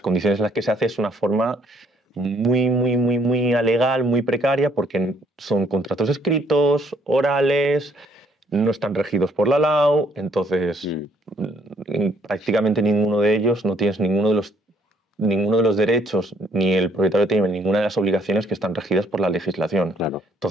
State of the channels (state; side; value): normal; both; correlation 0.65